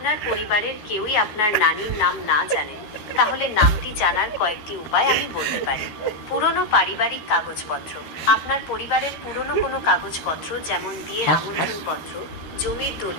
পরিবারের কেউই আপনার নানির নাম না জানেন, তাহলে নামটি জানার কয়েকটি উপায় আমি বলতে পারি। পুরনো পারিবারিক কাগজপত্র। আপনার পরিবারের পুরনো কোনো কাগজপত্র, যেমন বিয়ের আমন্ত্রণপত্র, জমির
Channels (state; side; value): late; right; 13 ms